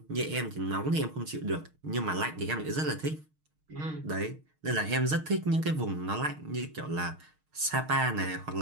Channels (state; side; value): late; left; 6.5 ms